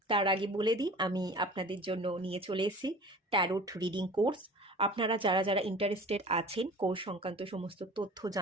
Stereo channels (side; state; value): both; normal; correlation 0.42